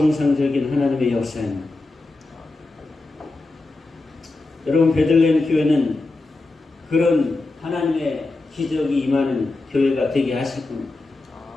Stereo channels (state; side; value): quieter; right; 3.2 dB